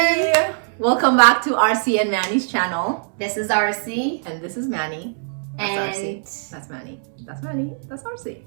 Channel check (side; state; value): left; silent; 64 dB below the other